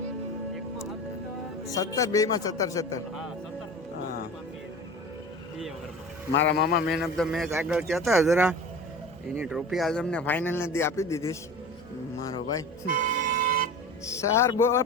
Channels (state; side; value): normal; both; correlation 0.34